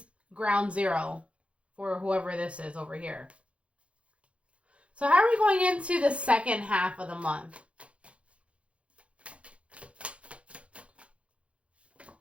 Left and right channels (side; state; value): left; late; 0.061 ms